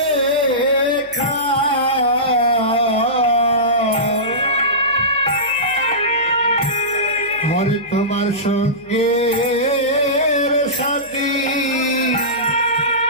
হরে তোমার সঙ্গে সাথী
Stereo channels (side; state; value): left; noise; hum, 28 dB below the sound